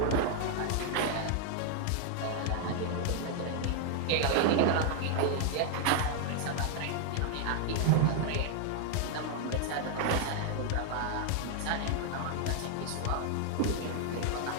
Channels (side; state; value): both; different; correlation 0.00